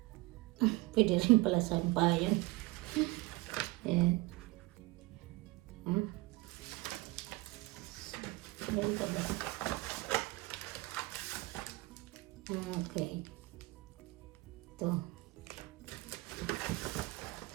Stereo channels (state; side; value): quieter; left; 22.2 dB